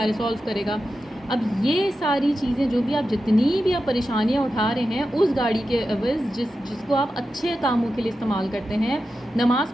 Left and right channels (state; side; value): normal; both; correlation 0.91